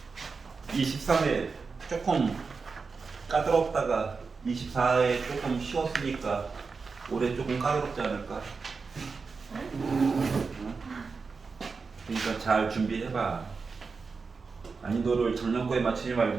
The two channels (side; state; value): left; quieter; 4.7 dB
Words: 23회 조금 까다롭다가 24회 조금 쉬웠으니까 올해 조금 까다롭지 않을까? 그러니까 잘 준비해봐. 난이도를 작년 거에 맞추지